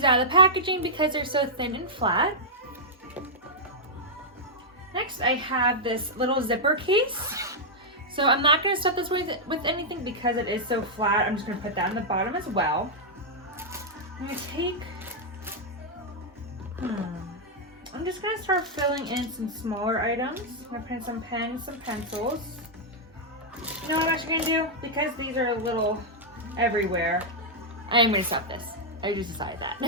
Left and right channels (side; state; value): both; normal; correlation -0.06